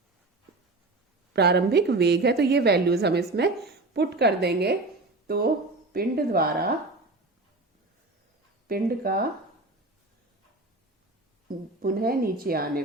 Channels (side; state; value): left; quieter; 3.1 dB